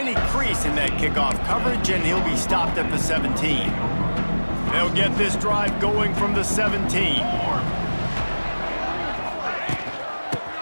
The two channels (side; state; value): both; inverted; correlation -1.00